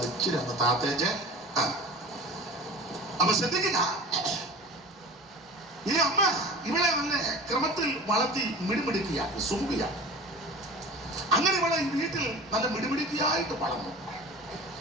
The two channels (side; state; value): both; normal; correlation 0.37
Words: ഇച്ചിരി ഒന്ന് താത്തേച്ച്. അപ്പൊ ശ്രദ്ധിക്കുക, ഈ അമ്മ ഇവളെ നല്ല ക്രമത്തിൽ വളർത്തി മിടുമിടുക്കിയാക്കി സുമുഖിയാക്കി. അങ്ങനെ ഇവളെ ഈ വീട്ടിൽ നല്ല മിടുമിടുക്കിയായിട്ട് വളർന്നു.